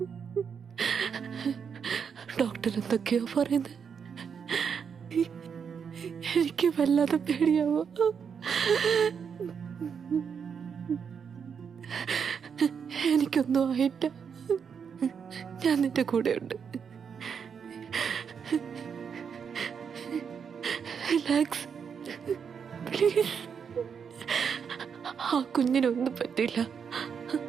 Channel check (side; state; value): left; quieter; 6.8 dB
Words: ഡോക്ടർ എന്തൊക്കെയോ പറയുന്നത്, എനിക്ക് വല്ലാതെ പേടിയാവോ. എനിക്കൊന്നും ആയിട്ട, ഞാൻ നിന്റെ കൂടെ ഉണ്ട്. Relax please. ആ കുഞ്ഞിനൊന്നും പറ്റില്ല.